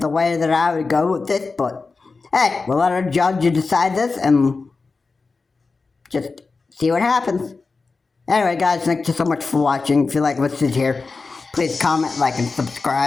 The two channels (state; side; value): quieter; right; 4.2 dB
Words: the way that I would go with this, but hey, we'll let our judge decide this and just see what happens. Anyway, guys, thank you so much for watching. If you like what's here, please comment, like, and